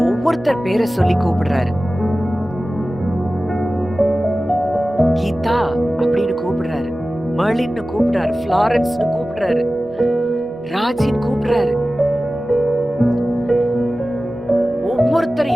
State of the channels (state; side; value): normal; both; correlation 0.96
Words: ஒவ்வொருத்தர் பேரை சொல்லி கூப்பிடுறாரு. கீதா அப்படின்னு கூப்பிடுறாரு, மர்லின்னு கூப்பிடுறாரு, ஃப்ளாரன்ஸ்னு கூப்பிடுறாரு, ராஜின்னு கூப்பிடுறாரு.